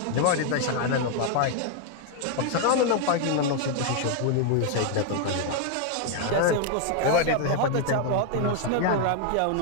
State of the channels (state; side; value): different; both; correlation 0.00